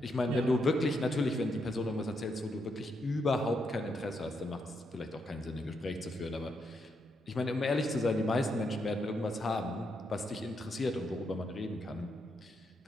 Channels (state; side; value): normal; both; correlation 0.80